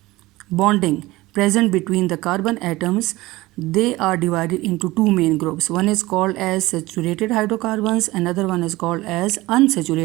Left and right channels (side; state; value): left; quieter; 19.4 dB